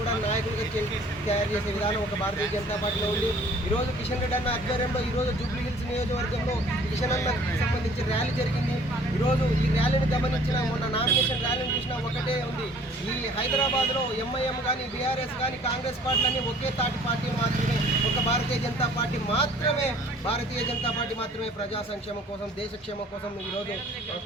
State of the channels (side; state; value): both; normal; correlation 0.53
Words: నాయకులుగా తయారు చేసే విధానం ఒక భారతీయ జనతా పార్టీలో ఉంది. ఈరోజు కిషన్ రెడ్డి అన్న ఆధ్వర్యంలో ఈరోజు జూబ్లీ హిల్స్ నియోజకవర్గంలో కిషన్ అన్నకు సంబంధించి ర్యాలీ జరిగింది. ఈరోజు ఈ ర్యాలీని గమనించిన మొన్న నామినేషన్ ర్యాలీని చూసినా ఒకటే ఉంది, ఈ హైదరాబాద్లో ఎంఐఎం కానీ బీఆర్ఎస్ కానీ కాంగ్రెస్ పార్టీలన్నీ ఒకే తాటి పార్టీ మాత్రమే, ఒక భారతీయ జనతా పార్టీ మాత్రమే ప్రజా సంక్షేమం కోసం దేశక్షేమం కోసం ఈరోజు